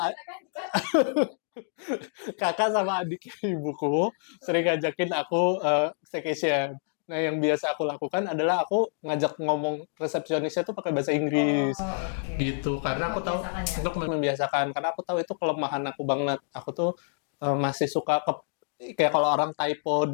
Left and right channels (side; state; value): right; silent; digital silence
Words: kakak sama adik ibuku sering ngajakin aku staycation. Nah, yang biasa aku lakukan adalah aku ngajak ngomong resepsionisnya tuh pakai bahasa Inggris. Oke. Gitu, karena Untuk membiasakan ya. untuk membiasakan, karena aku tahu itu kelemahan aku banget. Aku tuh masih suka kayak kalau orang typo